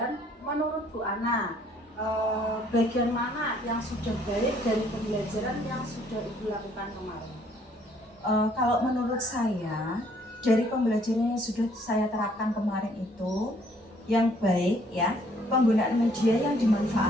menurut Bu Ana, bagian mana yang sudah baik dari pembelajaran yang sudah Ibu lakukan kemarin? Kalau menurut saya, dari pembelajaran yang sudah saya terapkan kemarin itu, yang baik ya, penggunaan media yang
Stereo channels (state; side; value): normal; both; correlation 0.63